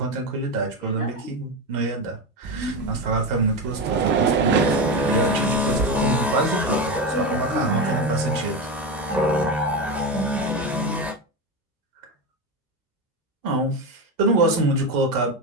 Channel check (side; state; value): both; normal; correlation 0.17